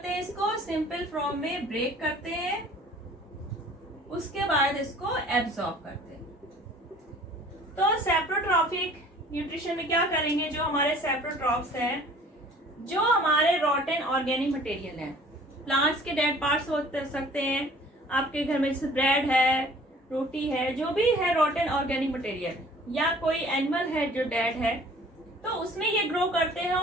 हैं, इसको सिंपल फॉर्म में ब्रेक करते हैं, उसके बाद इसको एब्जॉर्ब करते हैं। तो सेप्रोट्रॉफिक न्यूट्रिशन में क्या करेंगे, जो हमारे सेप्रोट्रॉफ्स हैं, जो हमारे रॉटेन ऑर्गेनिक मटेरियल हैं, प्लांट्स के डेड पार्ट्स हो सकते हैं, आपके घर में जैसे ब्रेड है, रोटी है, जो भी है रॉटेन ऑर्गेनिक मटेरियल, या कोई एनिमल है जो डेड है, तो उसमें ये ग्रो करते हैं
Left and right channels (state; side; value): normal; both; correlation 0.51